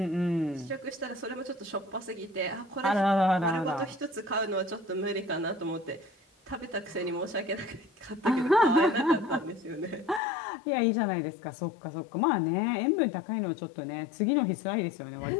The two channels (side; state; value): right; drops out; at 10.2 s